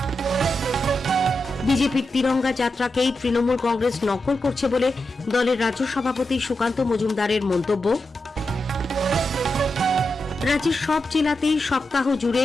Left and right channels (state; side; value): normal; both; correlation 0.88